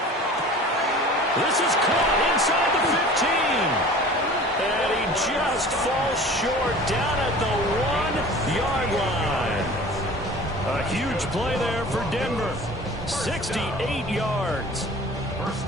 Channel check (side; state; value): both; normal; correlation 0.42